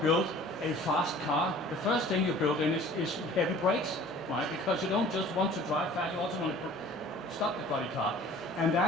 build a fast car, the first thing you build in is heavy brakes, right? Because you don't just want to drive fast, you also want to stop the bloody car. And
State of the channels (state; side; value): normal; both; correlation 0.48